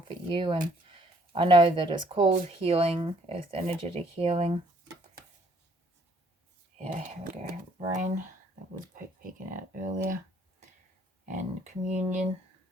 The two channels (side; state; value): both; normal; correlation 0.63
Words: you, and I know that it's called healing, earth energetic healing. Yeah, here we go. Rain, that was peeking out earlier. And communion.